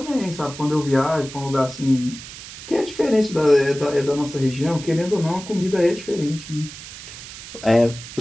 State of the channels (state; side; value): noise; right; hiss, 14 dB below the sound